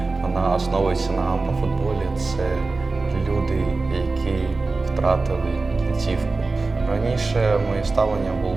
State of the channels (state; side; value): quieter; left; 3.7 dB